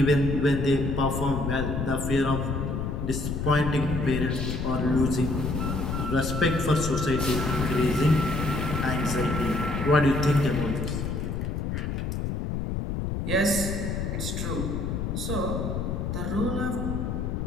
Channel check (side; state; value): left; noise; rumble, 2 dB below the sound